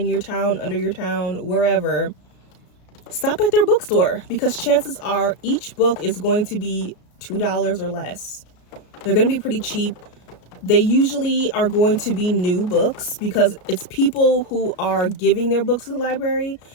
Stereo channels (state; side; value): late; right; 34 ms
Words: your town, under your town, wherever, stop at their bookstore, because chances are each book is going to be $2 or less. They're going to be pretty cheap. They usually are going to be new books because it's people who are giving their books to the library.